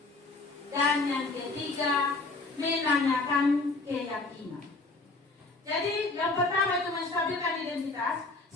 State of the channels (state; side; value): quieter; right; 3.4 dB